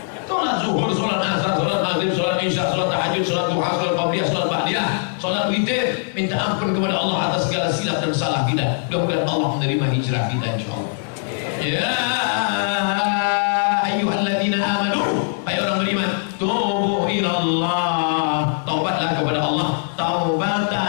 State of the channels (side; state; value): right; silent; digital silence